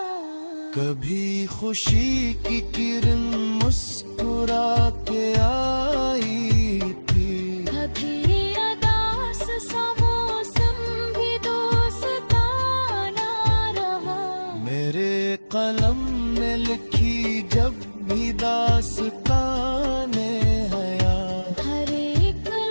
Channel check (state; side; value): inverted; both; correlation -1.00